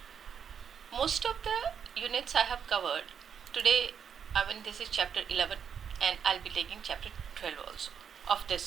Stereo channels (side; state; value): left; quieter; 7.5 dB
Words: Most of the units I have covered today. This is chapter 11 and I'll be taking chapter 12 also of